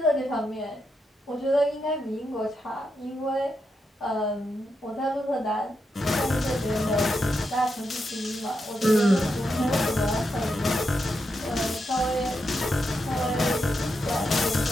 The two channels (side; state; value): both; normal; correlation 0.84